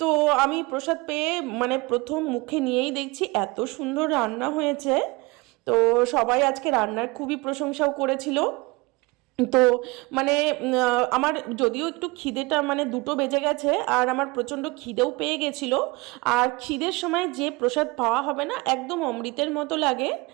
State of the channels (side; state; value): left; quieter; 24.7 dB